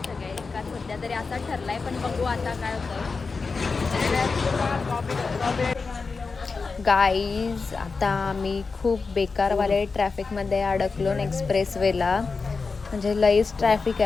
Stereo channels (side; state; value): right; quieter; 4.5 dB